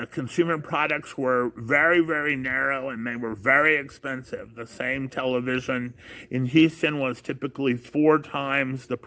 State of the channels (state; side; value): identical; both; correlation 1.00